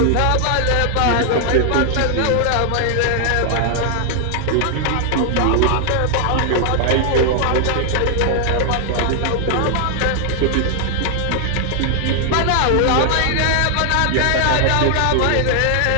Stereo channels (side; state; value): both; different; correlation 0.00